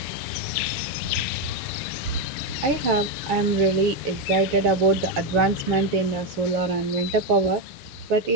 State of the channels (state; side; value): late; left; 6.9 ms